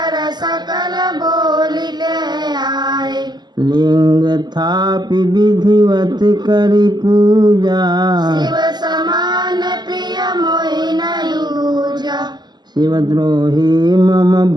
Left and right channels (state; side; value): late; left; 0.21 ms